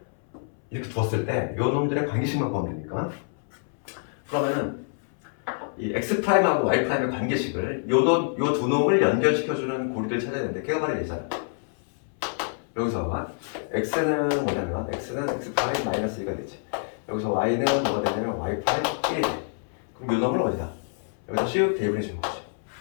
이렇게 두었을 때 요 놈들의 관계식만 구하면 되니까. 그러면은 이 x 프라임하고 y 프라임의 관계식을 요 두 놈을 연결시켜주는 고리를 찾아야 되는데 걔가 바로 얘잖아. 여기서 x는 뭐냐면 x는 x 프라임 마이너스 2가 되지. 여기서 y는 뭐가 되냐면 y 프라임 1이 돼. 그럼 요 놈을 어디다? 여기다 슉 대입을 해주는 거지.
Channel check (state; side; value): silent; right; 60 dB below the other